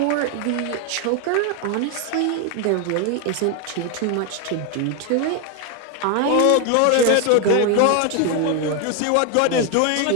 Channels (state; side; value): different; both; correlation 0.01